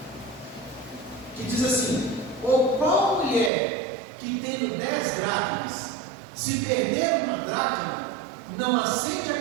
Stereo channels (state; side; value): drops out; left; at 3.5 s